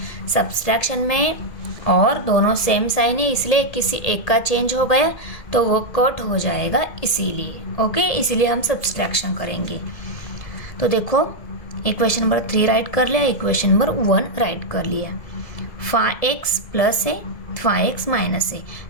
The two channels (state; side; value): late; right; 1.7 ms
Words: सब्सट्रैक्शन में और दोनों सेम साइन है, इसलिए किसी एक का चेंज हो गया तो वो कट हो जाएगा, इसीलिए। ओके, इसीलिए हम सब्सट्रैक्शन करेंगे। तो देखो इक्वेशन नंबर 3 राइट कर लिया, इक्वेशन नंबर 1 राइट कर लिया। 5x प्लस है, 5x माइनस है,